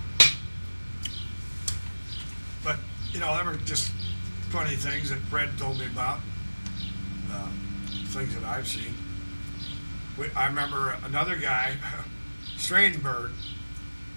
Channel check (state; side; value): inverted; both; correlation -1.00